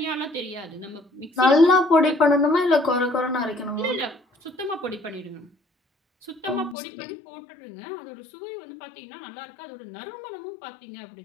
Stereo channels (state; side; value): drops out; right; at 6.8 s